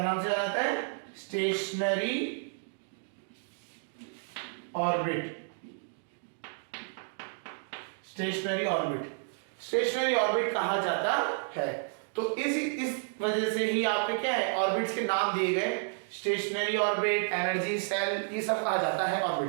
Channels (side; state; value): left; silent; 57 dB below the other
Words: नाम से जाना जाता है? Stationery orbit. स्टेशनरी ऑर्बिट कहा जाता है। तो इस वजह से ही आपके क्या है, ऑर्बिट्स के नाम दिए गए। स्टेशनरी ऑर्बिट, एनर्जी सेल, ये सब कहा जाता है